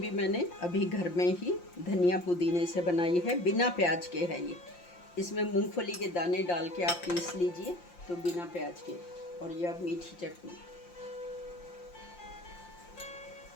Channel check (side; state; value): right; late; 5.7 ms